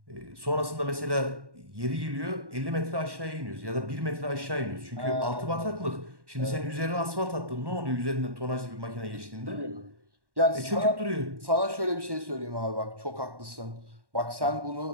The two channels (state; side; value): late; left; 1.1 ms